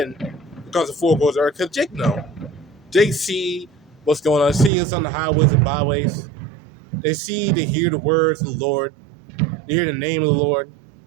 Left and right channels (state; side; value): drops out; left; at 4.7 s